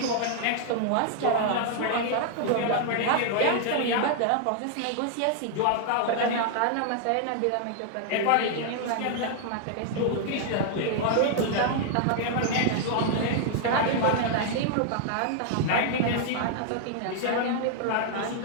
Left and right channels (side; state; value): both; different; correlation 0.00